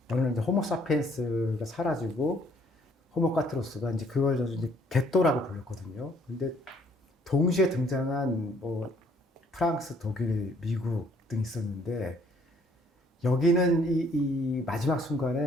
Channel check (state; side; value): normal; both; correlation 0.63